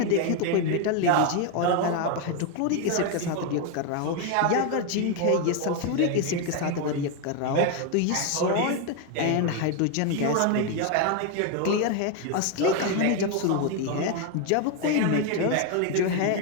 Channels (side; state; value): both; different; correlation 0.01